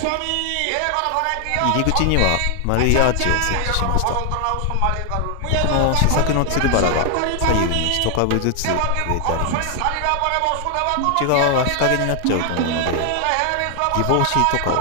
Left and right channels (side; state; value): both; different; correlation 0.00